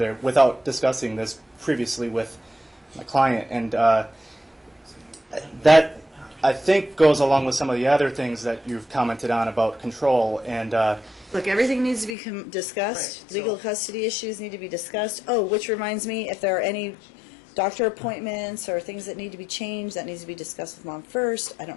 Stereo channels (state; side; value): drops out; right; at 12.2 s